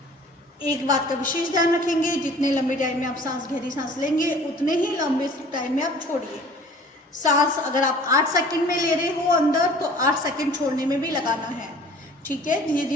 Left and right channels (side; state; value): both; normal; correlation 0.48